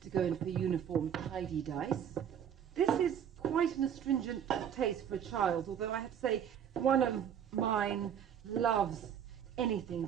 to go in for uniform tidy dice. This is quite an astringent taste for a child, although I have to say one of mine loves anything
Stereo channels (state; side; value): quieter; left; 8.8 dB